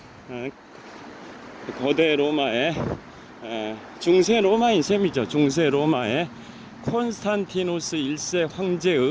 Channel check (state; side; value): identical; both; correlation 1.00